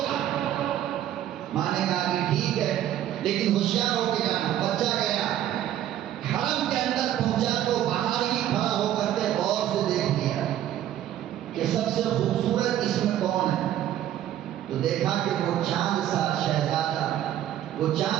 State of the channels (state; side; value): quieter; left; 11.9 dB